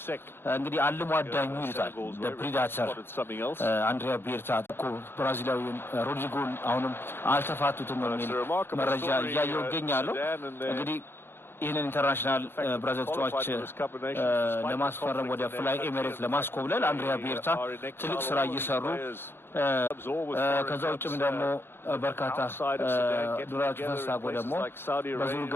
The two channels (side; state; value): right; late; 0.11 ms